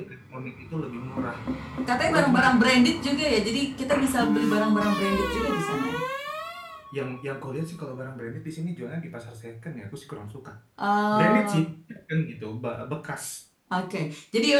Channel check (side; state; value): both; identical; correlation 1.00